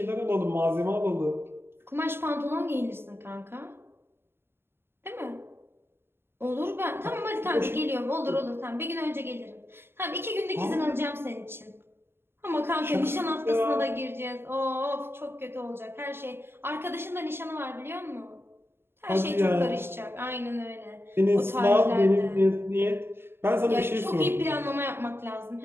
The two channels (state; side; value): late; left; 0.11 ms